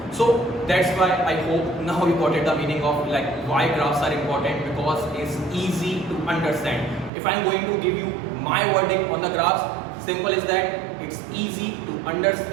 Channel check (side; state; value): left; drops out; at 7.1 s